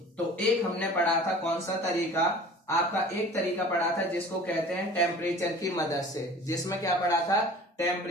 तो एक हमने पढ़ा था, कौन सा तरीका, आपका एक तरीका पढ़ा था जिसको कहते हैं टेम्परेचर की मदद से। जिसमें क्या पढ़ा था,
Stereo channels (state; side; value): normal; both; correlation 0.43